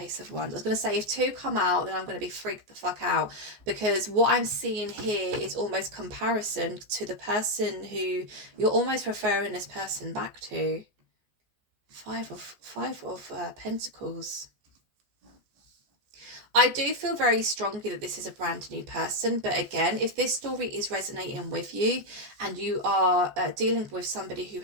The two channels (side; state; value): left; late; 14 ms